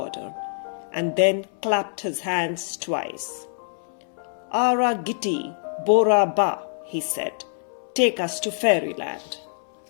and then clapped his hands twice. "Ara Gitti Bora Ba," he said. "Take us to fairyland."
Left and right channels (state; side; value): silent; right; 62 dB below the other